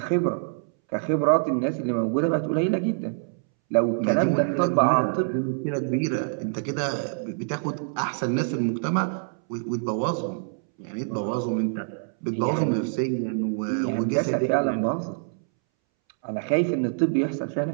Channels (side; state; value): left; silent; 61 dB below the other